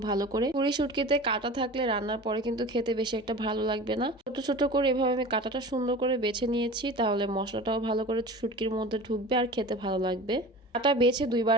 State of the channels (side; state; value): both; normal; correlation 0.36